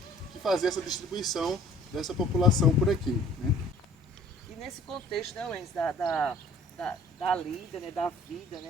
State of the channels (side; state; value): both; normal; correlation 0.53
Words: que faziam essa distribuição dessa população por aqui, né? E nesse contexto, né, Wenz, da lida, né, da vida,